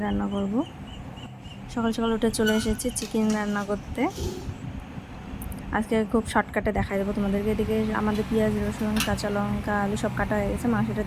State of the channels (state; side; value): identical; both; correlation 1.00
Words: রান্না করব। সকাল সকাল উঠে চলে এসেছি চিকেন রান্না করতে। আজকে খুব শর্টকাটে দেখাই দেবো তোমাদেরকে। এদিকে আমাদের পেঁয়াজ, রসুন, কাঁচা লঙ্কা, আলু সব কাটা হয়ে গেছে। মাংসটা